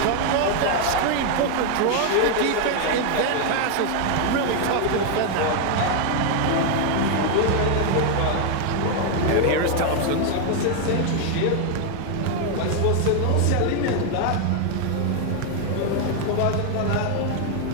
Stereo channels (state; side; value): different; both; correlation 0.00